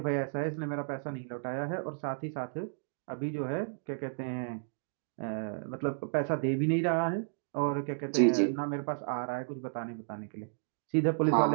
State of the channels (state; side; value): silent; left; digital silence